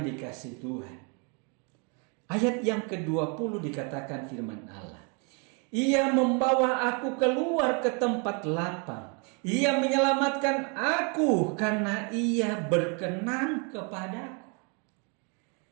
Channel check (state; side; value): quieter; left; 34.0 dB